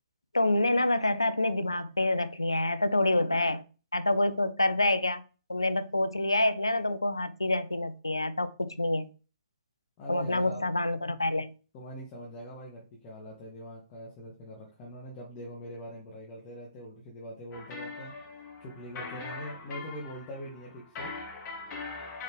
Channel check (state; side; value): inverted; both; correlation -0.87